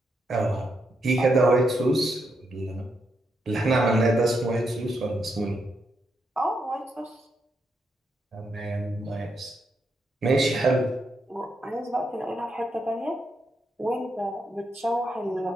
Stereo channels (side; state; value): both; normal; correlation 0.81